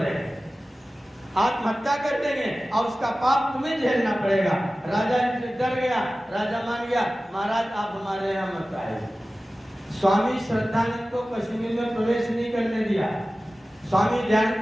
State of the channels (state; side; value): normal; both; correlation 0.96